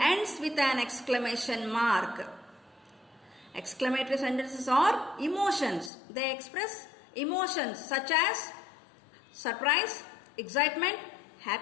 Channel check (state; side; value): drops out; right; at 5.9 s